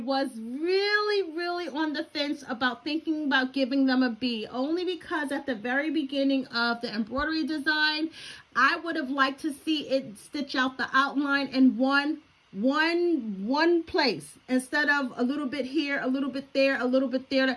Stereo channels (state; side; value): identical; both; correlation 1.00